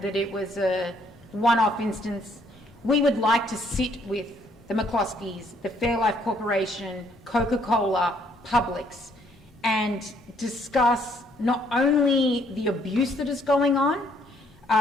that it was a one-off instance. We would like to sit with the McCloskeys, the Fairlife Corporation, Coca-Cola, Publix, and discuss not only the abuse that is going on,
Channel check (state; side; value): normal; both; correlation 0.67